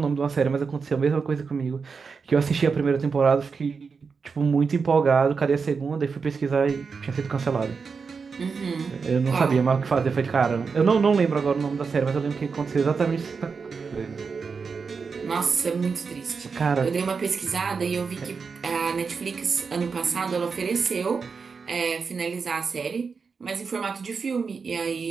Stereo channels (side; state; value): left; quieter; 5.2 dB